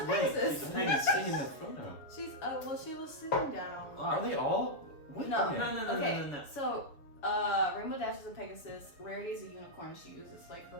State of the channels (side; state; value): right; late; 6.9 ms